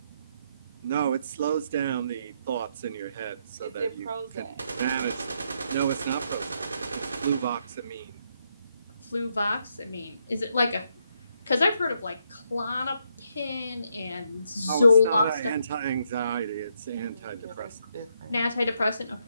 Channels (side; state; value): both; inverted; correlation -0.77